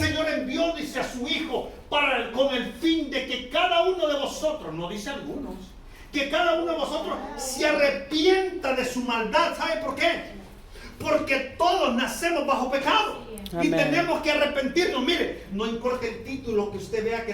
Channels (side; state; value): both; identical; correlation 1.00